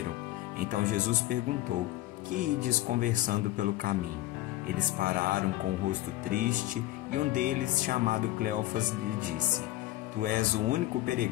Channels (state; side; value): quieter; right; 16.5 dB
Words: Então Jesus perguntou: "Que ides conversando pelo caminho?" Eles pararam com o rosto triste e um deles, chamado Cleofas, lhe disse: "Tu és o único